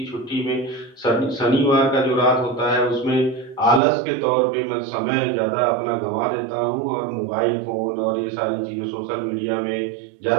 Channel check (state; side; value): drops out; left; at 3.8 s